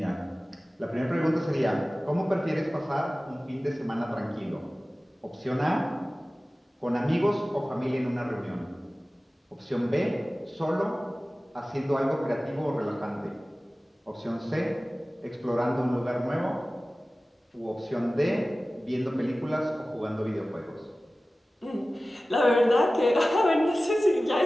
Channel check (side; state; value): both; normal; correlation 0.97